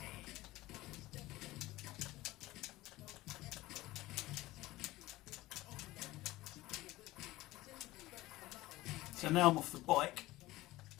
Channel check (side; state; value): right; quieter; 18.1 dB